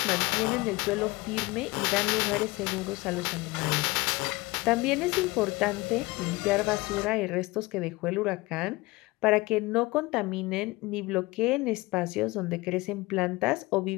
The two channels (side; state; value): right; quieter; 22.0 dB